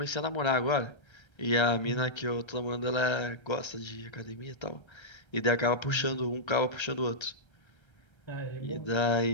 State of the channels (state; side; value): late; right; 1.3 ms